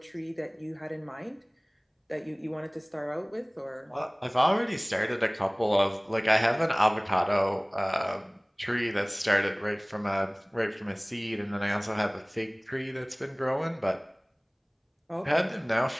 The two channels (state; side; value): identical; both; correlation 1.00